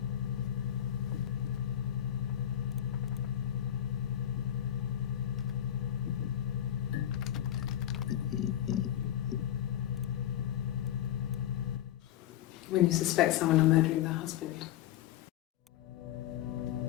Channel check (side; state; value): right; quieter; 11.4 dB